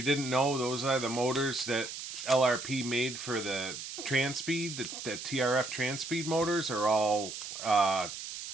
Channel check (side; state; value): right; noise; hiss, 8 dB below the sound